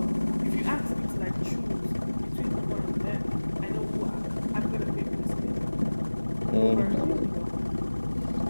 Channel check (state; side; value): inverted; both; correlation -1.00